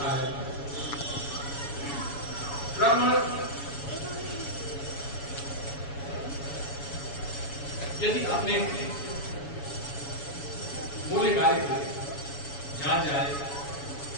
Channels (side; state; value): right; late; 7.1 ms